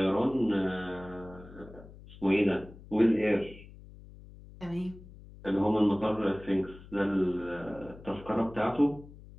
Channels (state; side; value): noise; left; hum, 19 dB below the sound